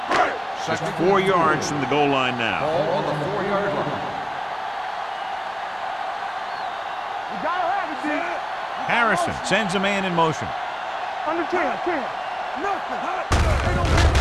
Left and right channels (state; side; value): identical; both; correlation 1.00